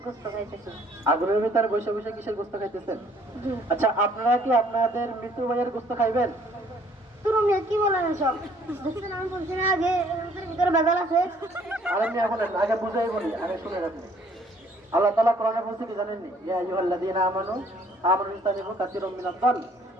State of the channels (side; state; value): both; normal; correlation 0.60